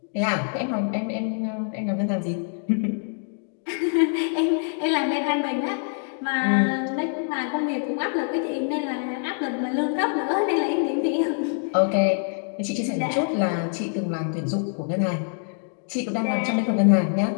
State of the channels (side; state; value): right; silent; 62 dB below the other